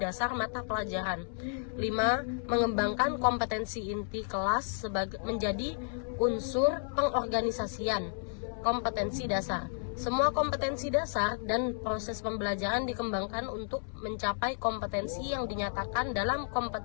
mata pelajaran. 5. Mengembangkan kompetensi inti kelas menjadi unsur pengorganisasian kompetensi dasar. Semua kompetensi dasar dan proses pembelajaran dikembangkan untuk mencapai kompetensi yang dinyatakan dalam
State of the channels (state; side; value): silent; right; 56 dB below the other